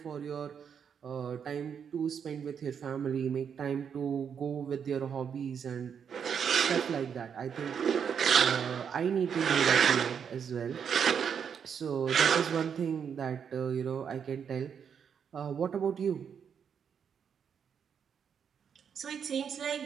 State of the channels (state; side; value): quieter; left; 7.4 dB